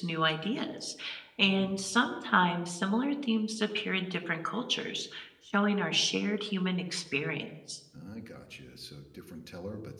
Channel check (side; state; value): both; identical; correlation 1.00